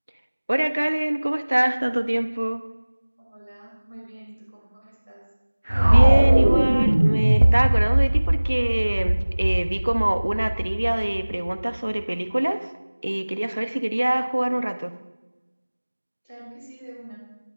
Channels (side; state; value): both; inverted; correlation -1.00